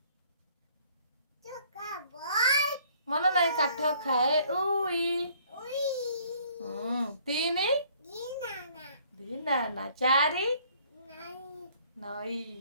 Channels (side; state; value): both; inverted; correlation -0.60